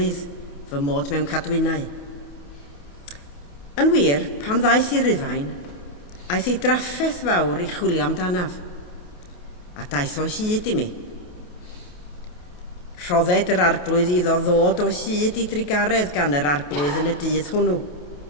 fy mod mewn cadwynau. Yn wir, pan ddaeth i Rufain, aeth ei draffaeth fawr i chwilio amdanaf, a daeth o hyd i mi. Rhodded yr arglwydd iddo ddod o hyd i drigaredd gan yr arglwydd yn y dydd hwnnw.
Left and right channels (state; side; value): late; right; 28 ms